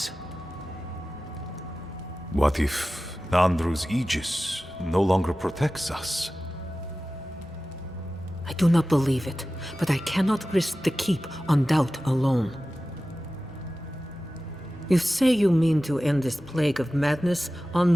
What if Nandru's Aegis no longer protects us? I do not believe it, but I cannot risk the keep on doubt alone. You say you mean to end this plague of madness,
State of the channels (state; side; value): normal; both; correlation 0.95